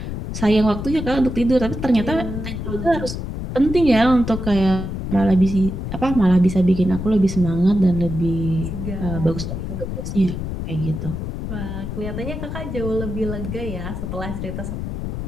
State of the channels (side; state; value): left; noise; rumble, 5 dB below the sound